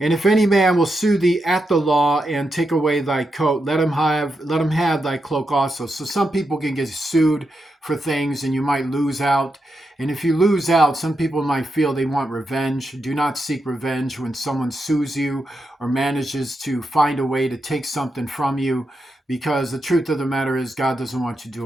if any man will sue thee at the law and take away thy coat, let him have thy cloak also. So some people can get sued for things and you might lose out. And if you lose out, some people might feel they want revenge. Do not seek revenge when someone sues you or manages to find a way to take something from you, because the truth of the matter is God doesn't want you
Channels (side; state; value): both; normal; correlation 0.85